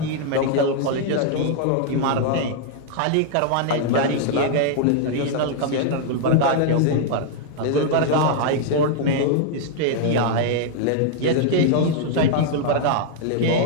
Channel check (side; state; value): both; different; correlation 0.00